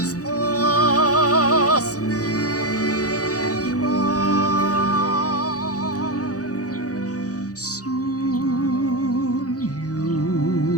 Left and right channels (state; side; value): late; right; 0.67 ms